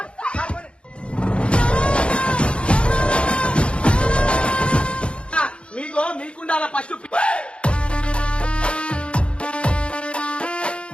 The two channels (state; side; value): late; right; 0.057 ms